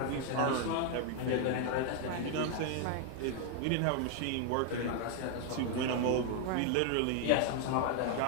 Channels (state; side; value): different; both; correlation 0.00